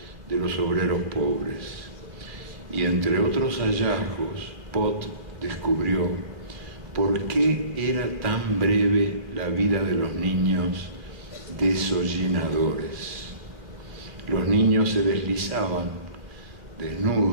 de los obreros pobres. Y entre otros hallazgos, Pott descubrió por qué era tan breve la vida de los niños desollinadores. Los niños se deslizaban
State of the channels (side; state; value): left; late; 2.5 ms